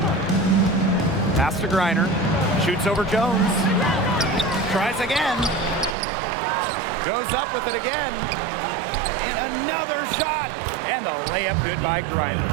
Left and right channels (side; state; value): left; drops out; at 6.0 s